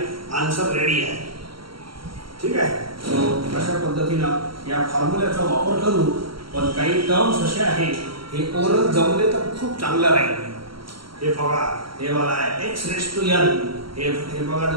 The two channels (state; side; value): late; left; 0.74 ms